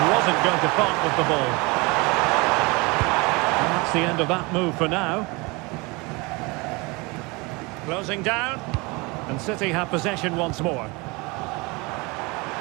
going to part with the ball. And that's the end of that move for now. Closing down, and City have possession once more.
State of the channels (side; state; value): left; quieter; 26.3 dB